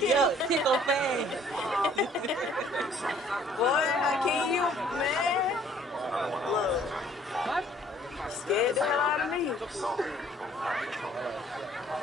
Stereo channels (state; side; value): normal; both; correlation 0.58